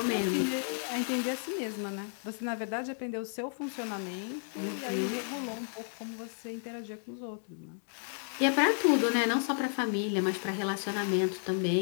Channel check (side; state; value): right; silent; 56 dB below the other